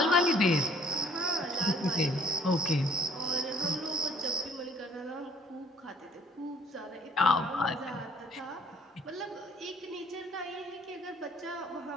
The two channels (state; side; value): normal; both; correlation 0.58